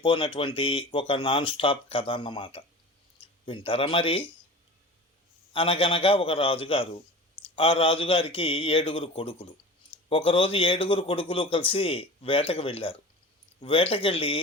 ఒక నాన్ స్టాప్ కథ అన్నమాట. వింటారా మరి? అనగనగా ఒక రాజుగారు. ఆ రాజుగారికి 7 కొడుకులు. ఒకరోజు 7 కొడుకులు కలిసి వేటకు వెళ్ళారు. వేటకెళ్ళి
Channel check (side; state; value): both; normal; correlation 0.36